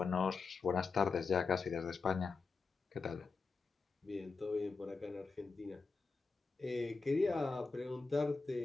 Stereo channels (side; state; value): right; quieter; 4.4 dB